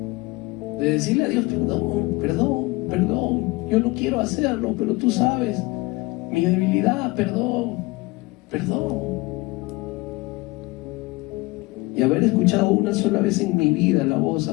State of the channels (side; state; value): right; quieter; 23.0 dB